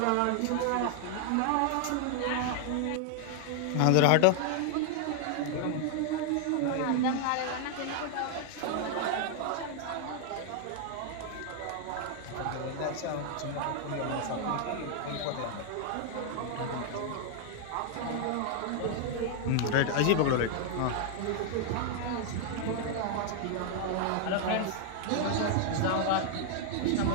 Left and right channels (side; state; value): both; different; correlation 0.00